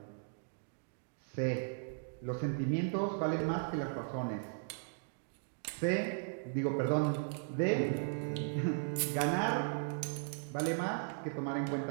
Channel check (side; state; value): left; silent; digital silence